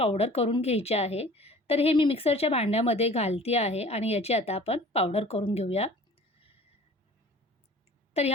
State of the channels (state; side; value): normal; both; correlation 0.46